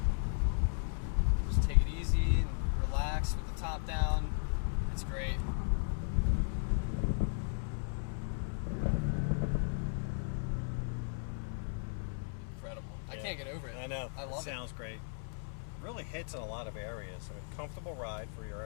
Just take it easy and relax with the top down. It's great. Incredible. I can't get over it. I know. I love it. Sounds great. Really hits in a lot of areas. I mean, comfortable ride for your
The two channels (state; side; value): silent; right; 54 dB below the other